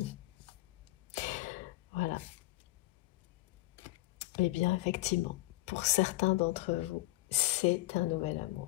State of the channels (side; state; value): right; quieter; 19.6 dB